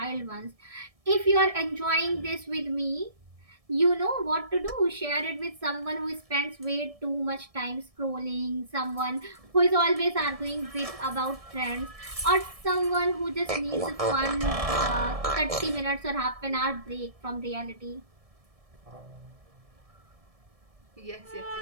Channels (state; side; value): late; left; 1.7 ms